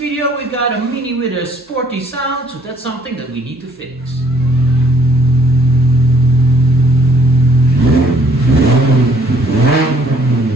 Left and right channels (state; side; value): normal; both; correlation 0.62